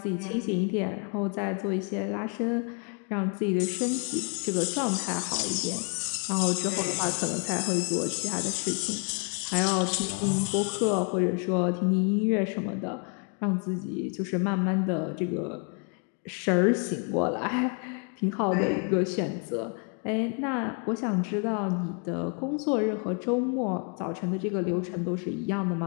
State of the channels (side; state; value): right; quieter; 37.8 dB